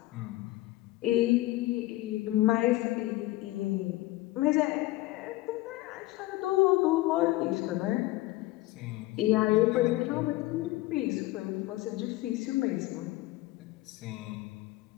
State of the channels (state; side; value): quieter; right; 18.1 dB